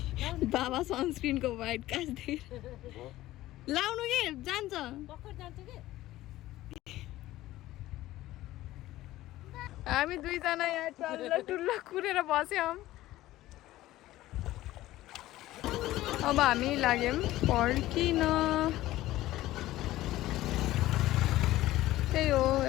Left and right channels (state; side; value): quieter; right; 15.9 dB